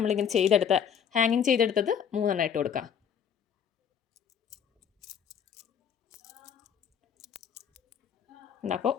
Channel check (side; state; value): right; quieter; 8.0 dB